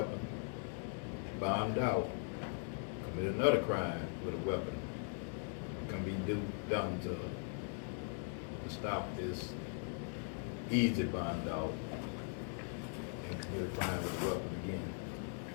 bombed out, commit another crime with a weapon, can be done to stop this easy bond out and commit a crime with a weapon again.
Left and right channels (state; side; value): silent; right; 51 dB below the other